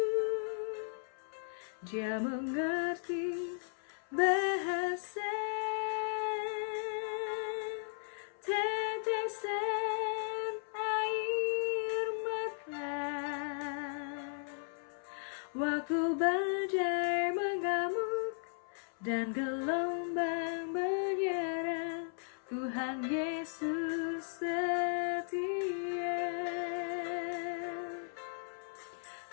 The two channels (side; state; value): right; silent; 54 dB below the other